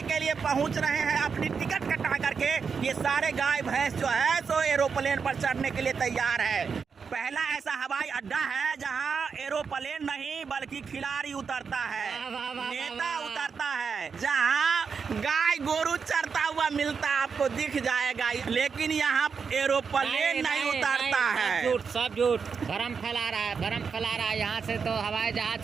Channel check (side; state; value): left; quieter; 5.8 dB